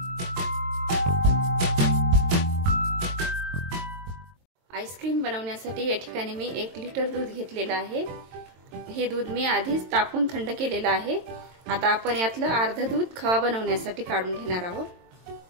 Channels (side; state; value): left; late; 22 ms